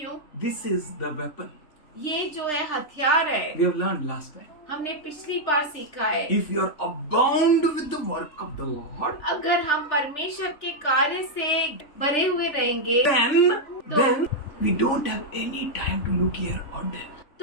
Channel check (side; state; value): right; late; 3.4 ms